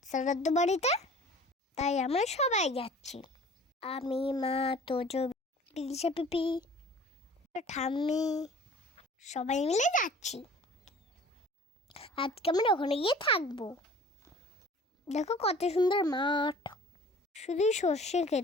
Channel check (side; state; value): both; normal; correlation 0.47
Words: শ্রাদ্ধ বাড়িতে, তাই আমরা সবাই যাচ্ছি। আমি, মা, তোজো, বিদিশা পিপি, ঠাম্মি সবাই মিলে যাচ্ছি। আজকে আমরা ওখানে গিয়ে থাকবো। দেখো কত সুন্দর মাঠ, শুধুই সর্ষে